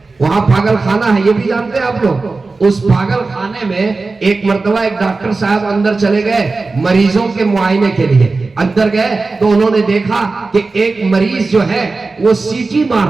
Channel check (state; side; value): quieter; left; 3.8 dB